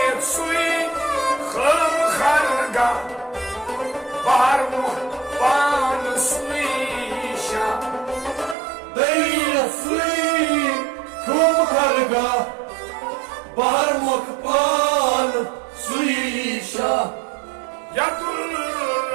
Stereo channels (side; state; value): left; drops out; at 8.6 s